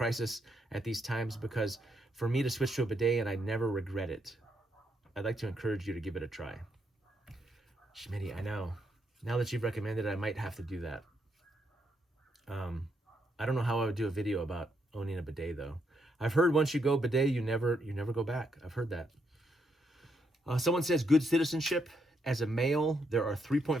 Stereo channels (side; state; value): both; normal; correlation 0.78